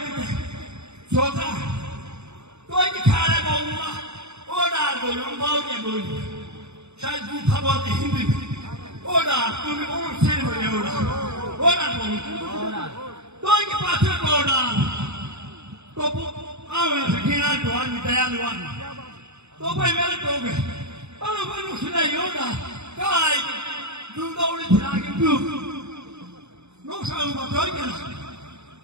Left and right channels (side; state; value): left; late; 0.81 ms